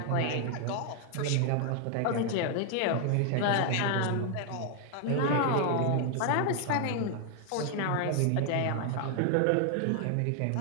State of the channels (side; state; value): both; different; correlation 0.00